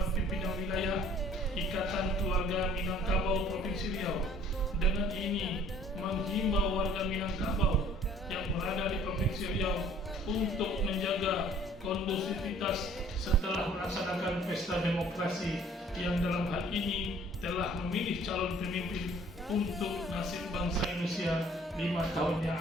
Pimpinan Wilayah Ikatan Keluarga Minangkabau Provinsi Riau dengan ini menghimbau warga Minangkabau yang berada di Provinsi Riau untuk menjaga kondusivitas setelah melaksanakan pesta demokrasi yang dalam hal ini telah memilih calon pemimpin untuk nasib bangsa Indonesia 5 tahun yang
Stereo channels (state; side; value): normal; both; correlation 0.55